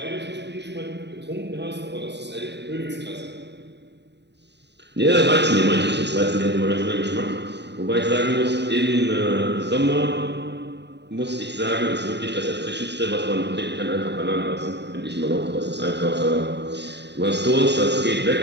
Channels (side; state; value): left; late; 0.50 ms